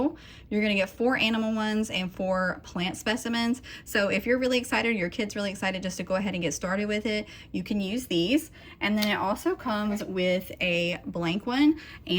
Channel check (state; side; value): identical; both; correlation 1.00